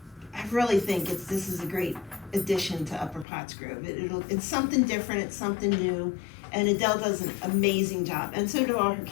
really think this is a great addition to Upper Pottsgrove. It's something different, it's something new, and Adele does an amazing job, and so do all her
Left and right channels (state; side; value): drops out; right; at 3.2 s